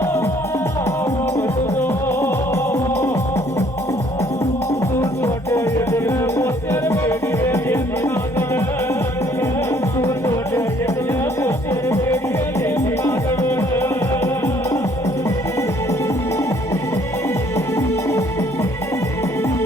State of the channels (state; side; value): normal; both; correlation 0.61